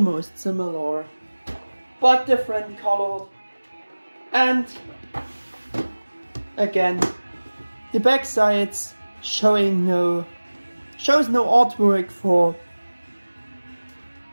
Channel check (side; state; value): both; inverted; correlation -1.00